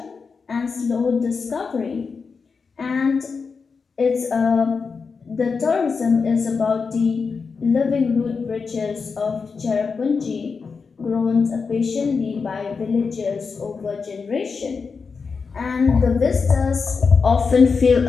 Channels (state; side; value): quieter; right; 5.1 dB